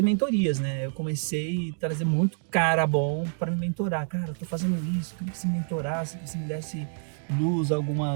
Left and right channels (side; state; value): left; silent; digital silence